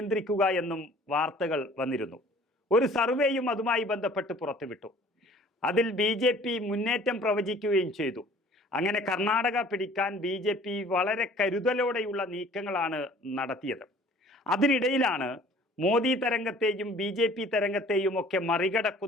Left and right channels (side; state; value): both; normal; correlation 0.51